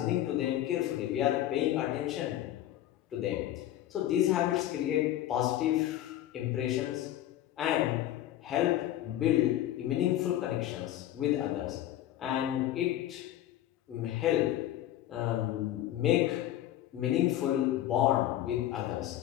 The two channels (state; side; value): quieter; right; 13.0 dB